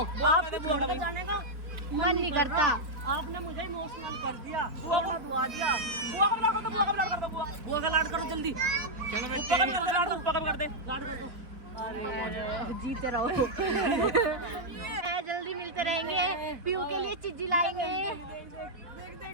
बुआ का कर दे, बुआ का भी। जाने का मन नहीं करता। आपने मुझे इमोशनल कर दिया, बुआ दुआ दिया। बुआ का भी लाड़ कर दे, बुआ का भी लाड़ कर दे, बुआ बुआ का लाड करो जल्दी, ऊपर का भी कर दे, लाड़ ऊपर का भी कर दे। लाड कर दो। जीते रहो। जल्दी मिलते रहेंगे। पीयू के लिए चिज्जी लाएंगे।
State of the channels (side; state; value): left; late; 3.6 ms